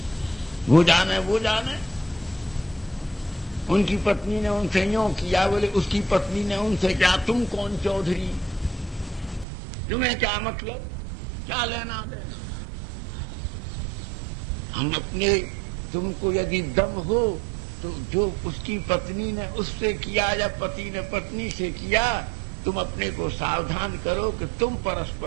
वो जाने। उनकी पत्नी ने उनसे यूं किया, बोले उसकी पत्नी ने उनसे क्या, तुम कौन चौधरी, तुम्हें क्या मतलब, क्या लेना देना। हम अपने, तुमको यदि दम हो तो जो उसकी पत्नी ने उससे किया या पति ने पत्नी से किया, तुम अपने को सावधान करो कि तुम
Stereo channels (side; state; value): left; drops out; at 9.5 s